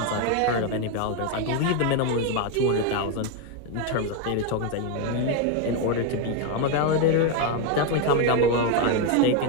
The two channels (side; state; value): both; different; correlation 0.02